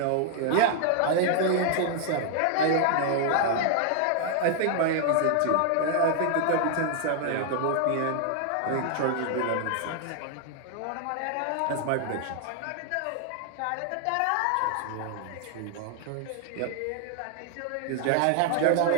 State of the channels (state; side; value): different; both; correlation 0.00